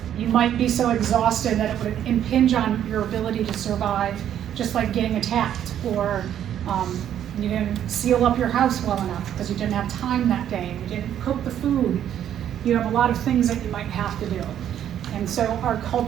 You might be so exhausted that it would impinge on your ability to survive, just like getting attacked, or you didn't seal up your house well enough because you didn't have time that day, you didn't cook the food. You have a lot of things that you might have to do. And so our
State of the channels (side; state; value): left; quieter; 10.3 dB